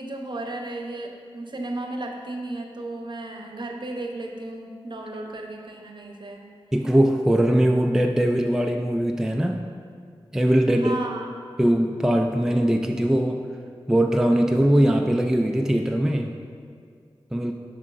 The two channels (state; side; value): normal; both; correlation 0.96